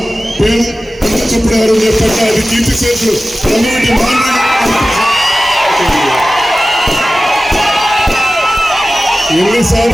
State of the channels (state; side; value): normal; both; correlation 0.95